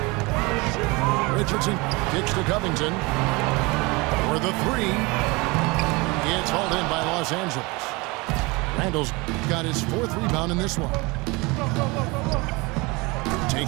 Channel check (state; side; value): quieter; left; 25.3 dB